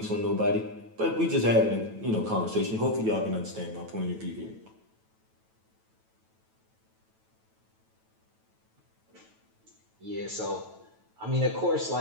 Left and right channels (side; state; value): left; late; 9.1 ms